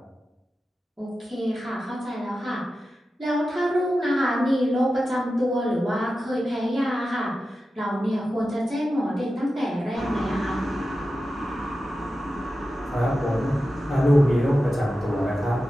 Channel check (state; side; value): normal; both; correlation 0.92